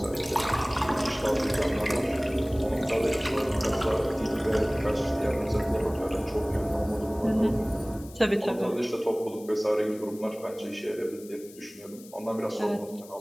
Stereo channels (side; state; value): left; noise; hiss, 21 dB below the sound